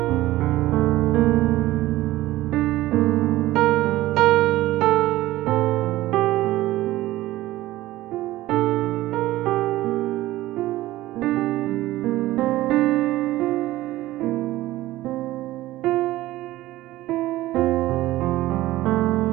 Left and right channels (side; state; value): left; quieter; 16.5 dB